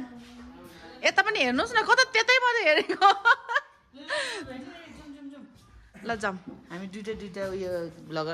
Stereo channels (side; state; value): both; identical; correlation 1.00